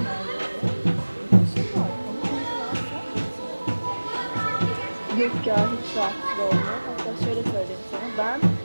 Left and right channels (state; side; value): inverted; both; correlation -1.00